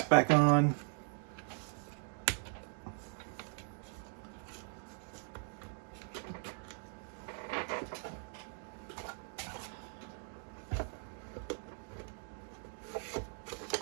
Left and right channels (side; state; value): left; silent; 51 dB below the other